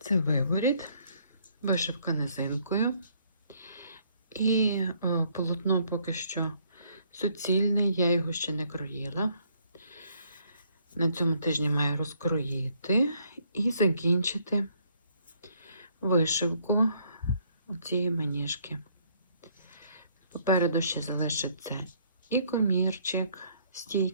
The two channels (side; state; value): both; inverted; correlation -0.66